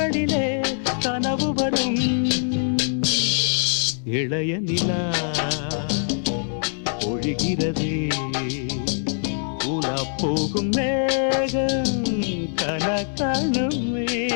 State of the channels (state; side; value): silent; right; digital silence